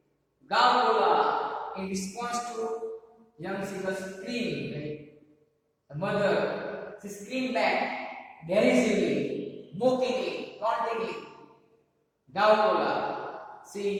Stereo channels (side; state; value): both; identical; correlation 1.00